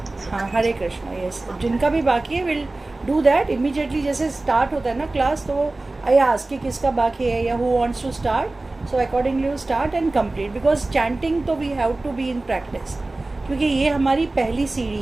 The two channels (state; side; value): quieter; left; 3.0 dB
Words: हाँ Hare Krishna, yes. जिनका भी बाकी है विल डू दैट इमीडिएटली। जैसे स्टार्ट होता है ना क्लास, तो आई आस्क कि किसका बाकी है या who wants to start, so accordingly you start and complete, because chanting तो we have to be in practice, क्योंकि ये हमारी पहली